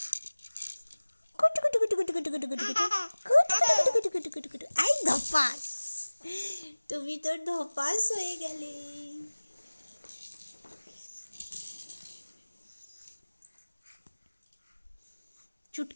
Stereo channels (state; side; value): inverted; both; correlation -1.00